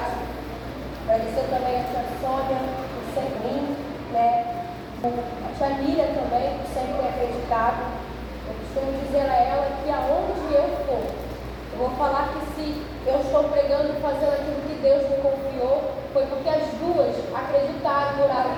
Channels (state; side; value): identical; both; correlation 1.00